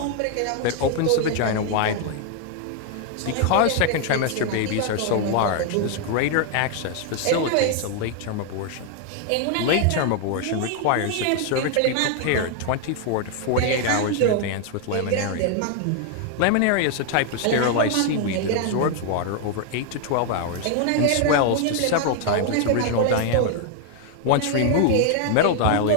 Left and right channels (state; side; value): different; both; correlation 0.00